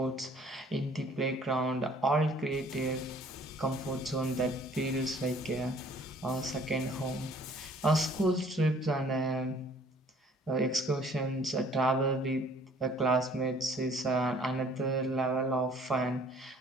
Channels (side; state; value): both; normal; correlation 0.56